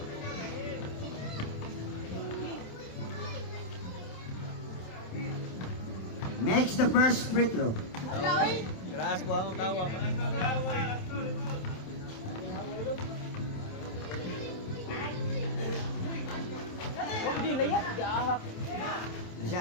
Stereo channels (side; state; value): right; late; 27 ms